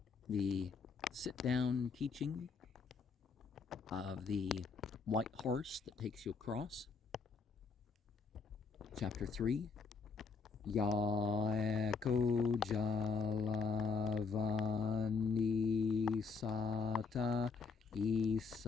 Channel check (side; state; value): right; quieter; 5.0 dB